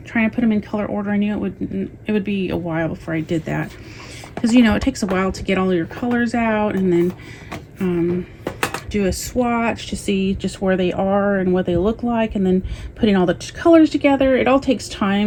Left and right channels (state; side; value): identical; both; correlation 1.00